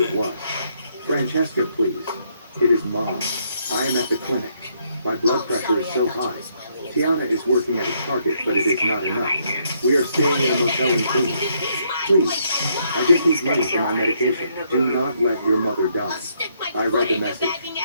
it was. Francesca, please. It is Mom. I am at the clinic. My blood pressure is so high. Tiana is working at a Target, but it is not enough. We are staying in a motel in Queens. Please, I just need money for my medication. Do not let your mother die. I read the message.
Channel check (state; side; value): inverted; both; correlation -0.72